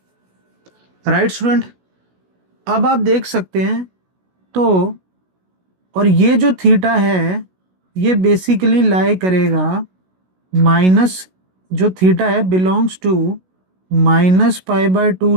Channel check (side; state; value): left; late; 16 ms